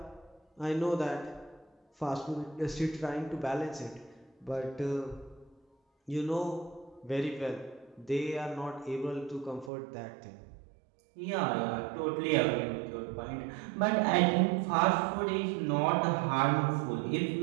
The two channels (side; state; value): left; drops out; at 9.7 s